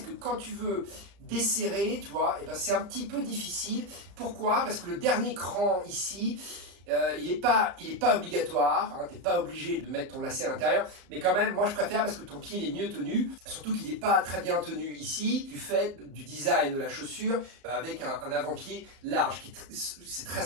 que quand tu veux desserrer, tu vois, et ben c'est un petit peu difficile. Pourquoi? Parce que le dernier cran ici, il est pas obligatoire, hein, tu n'es pas obligé de mettre ton lacet à l'intérieur, mais quand même, moi je préfère parce que ton pied il est mieux tenu, surtout qu'il n'est pas très bien tenu ici, du fait du design de la chaussure, avec un avant-pied large, c'est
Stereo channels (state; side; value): late; left; 35 ms